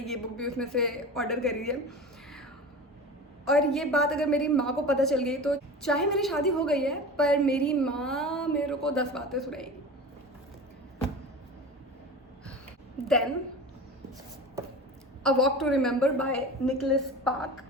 ये बुक भी उसमें से ऑर्डर करी है। और ये बात अगर मेरी माँ को पता चल गई तो चाहे मेरी शादी हो गई है पर मेरी माँ मेरे को 10 बातें सुनाएगी। Then a walk to remember by Nicholas Spark.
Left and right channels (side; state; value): both; normal; correlation 0.33